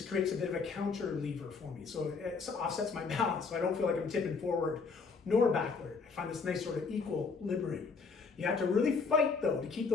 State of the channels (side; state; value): right; quieter; 4.8 dB